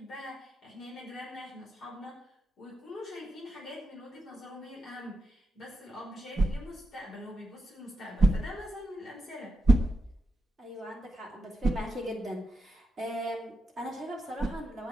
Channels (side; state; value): both; normal; correlation 0.85